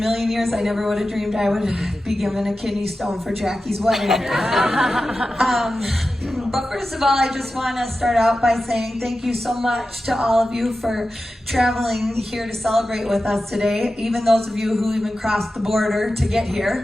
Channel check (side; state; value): both; normal; correlation 0.93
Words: years I never would have dreamed I would be given a kidney stone for Jackie's wedding. But first of all, I just want to start out by saying thank you so much to all of you for traveling here to celebrate with us today, even those of you who even crossed the border to get